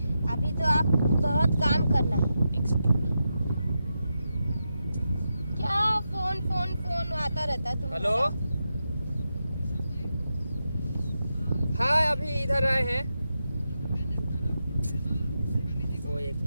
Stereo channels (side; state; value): both; inverted; correlation -0.88